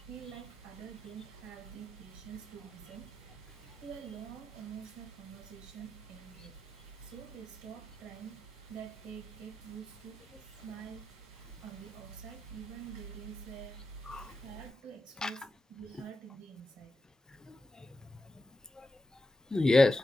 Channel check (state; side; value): normal; both; correlation 0.88